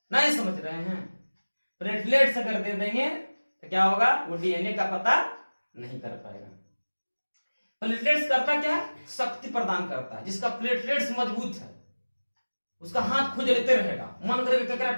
नहीं समझ रहे हैं? प्लेटलेट्स अगर दे देंगे तो क्या होगा, वो डीएनए का पता नहीं कर पाएगा। प्लेटलेट्स करता क्या है, शक्ति प्रदान करता है। जिसका प्लेटलेट्स मजबूत है उसका हाथ खुजलते रहेगा, मन करेगा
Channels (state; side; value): inverted; both; correlation -1.00